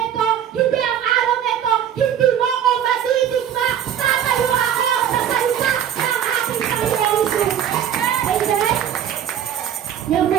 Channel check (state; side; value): quieter; left; 9.6 dB